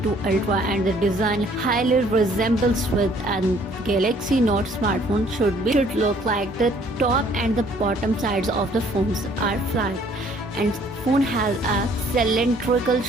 Ultra, and the design highly resembles with a Galaxy Note smartphone should look like. The top and the bottom sides of the phones are flat, and phone has a cylindrical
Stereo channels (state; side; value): normal; both; correlation 0.60